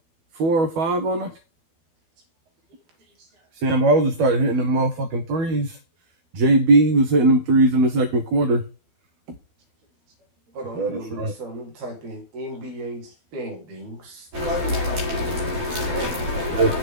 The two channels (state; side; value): late; left; 12 ms